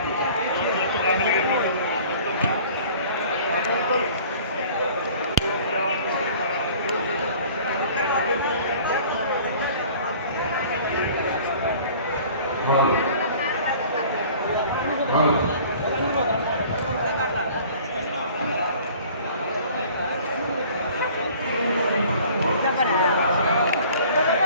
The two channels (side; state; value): both; inverted; correlation -0.49